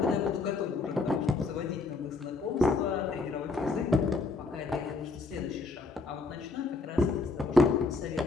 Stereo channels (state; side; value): quieter; right; 3.7 dB